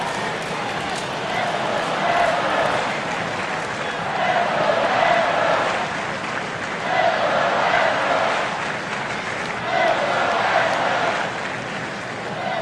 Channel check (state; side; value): identical; both; correlation 1.00